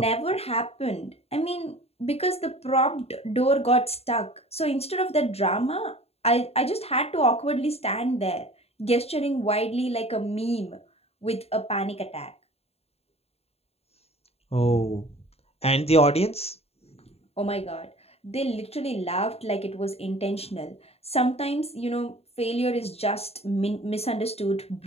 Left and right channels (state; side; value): late; right; 0.29 ms